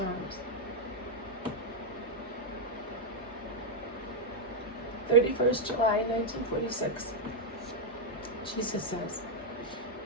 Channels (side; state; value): both; normal; correlation -0.02